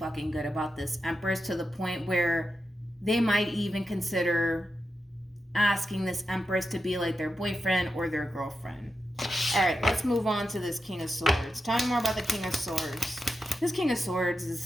good about this Empress, to the point where they might even consider asking this Empress to be like their boyfriend or their girlfriend. All right, let's move on to this King of Swords. Tell me more about the King of Swords. This King of Swords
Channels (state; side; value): normal; both; correlation 0.88